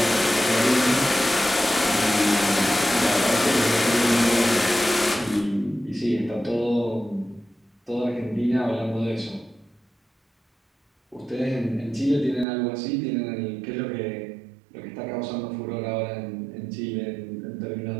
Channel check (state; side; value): drops out; left; at 12.5 s